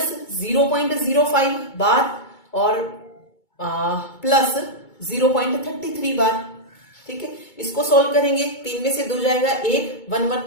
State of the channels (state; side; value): late; right; 2.2 ms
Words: 0.05 बार और प्लस 0.33 बार। ठीक है, इसको सोल्व करेंगे, 3 में से 2 जाएगा 1, 1